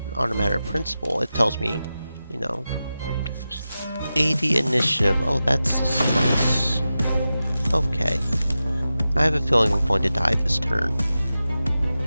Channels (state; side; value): inverted; both; correlation -0.93